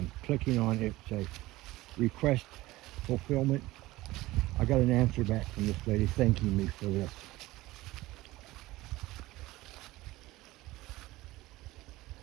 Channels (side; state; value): left; quieter; 18.5 dB